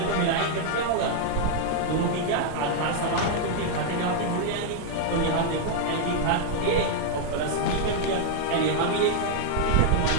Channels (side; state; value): both; different; correlation -0.01